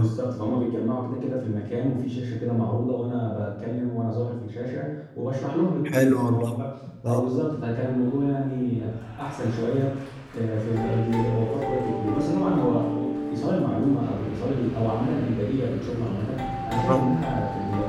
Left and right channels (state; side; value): identical; both; correlation 1.00